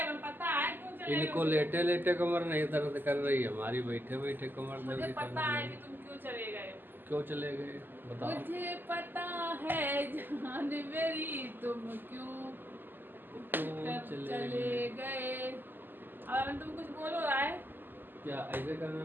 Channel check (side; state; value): left; late; 0.092 ms